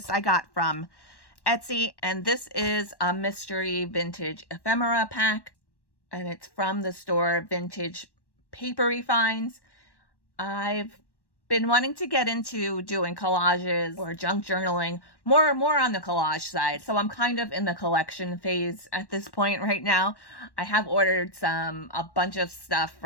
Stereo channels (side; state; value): right; late; 1.1 ms